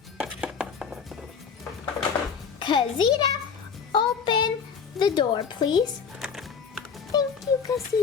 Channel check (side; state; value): right; quieter; 6.3 dB